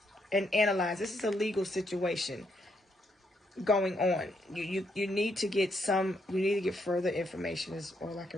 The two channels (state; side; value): normal; both; correlation 0.76